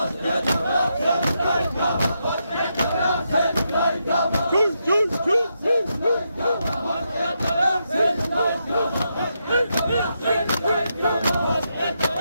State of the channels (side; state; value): both; inverted; correlation -0.83